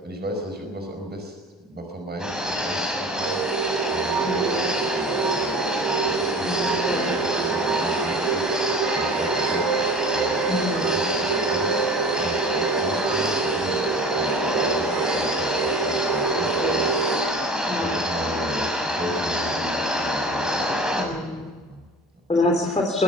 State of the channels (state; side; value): normal; both; correlation 0.39